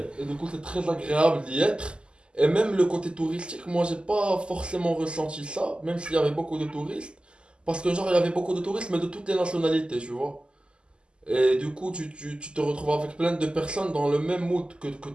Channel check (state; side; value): late; left; 0.050 ms